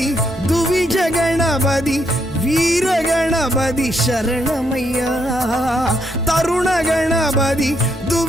துவிஜ கணபதி வீர கணபதி சரணமையா, தருண கணபதி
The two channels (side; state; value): both; normal; correlation 0.76